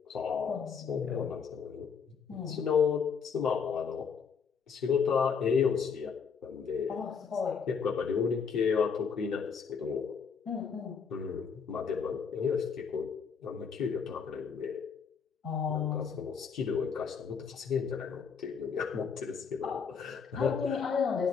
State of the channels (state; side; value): quieter; right; 6.2 dB